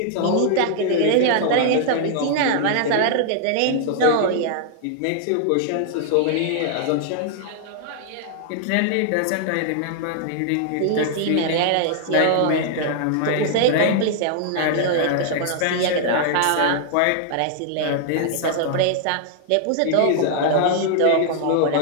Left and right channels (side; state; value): both; different; correlation -0.01